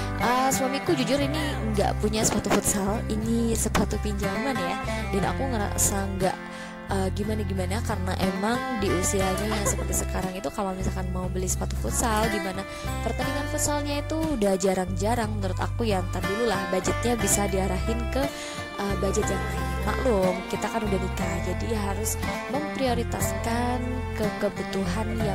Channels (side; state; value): both; identical; correlation 1.00